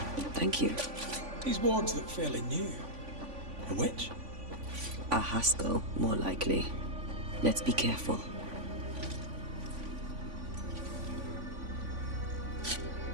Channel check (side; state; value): left; late; 3.5 ms